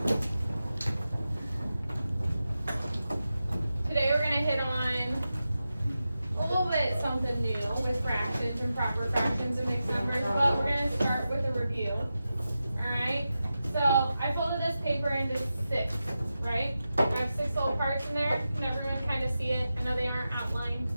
Today we're going to hit on a little bit something new with fractions and proper fractions and mixed numbers, but we're going to start with a review. Alright, so I folded this paper into 6, right? I have 6 little parts in there. Can everyone kind of see it? I know they aren't outlined.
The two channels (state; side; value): inverted; both; correlation -0.91